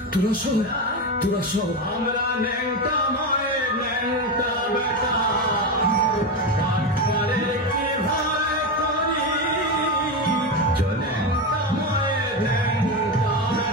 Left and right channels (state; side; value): normal; both; correlation 0.15